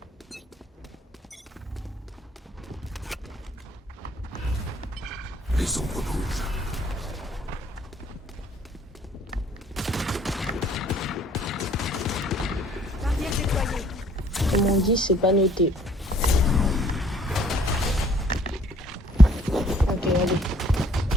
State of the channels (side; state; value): both; normal; correlation 0.59